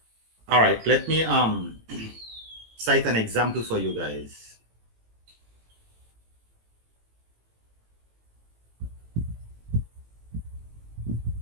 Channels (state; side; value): late; left; 18 ms